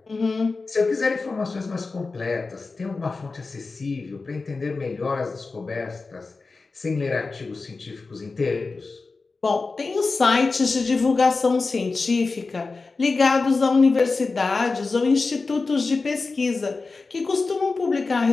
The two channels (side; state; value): right; quieter; 4.0 dB